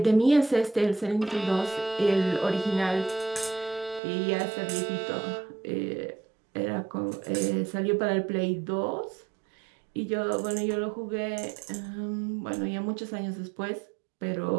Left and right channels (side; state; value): left; drops out; at 4.0 s